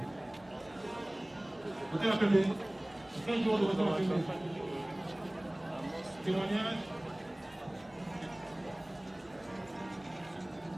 Moteur Mapembe, 5 jours de moteur Mapembe. Témoignage.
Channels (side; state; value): right; noise; hum, 27 dB below the sound